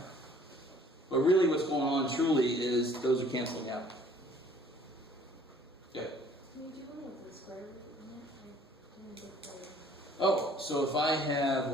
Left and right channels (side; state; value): both; normal; correlation 0.56